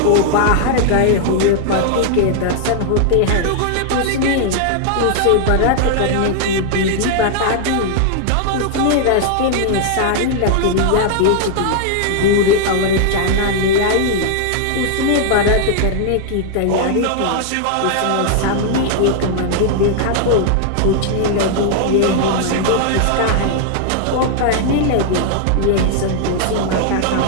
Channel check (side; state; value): both; different; correlation 0.00